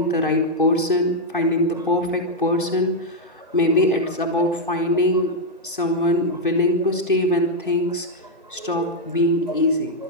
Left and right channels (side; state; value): both; normal; correlation -0.01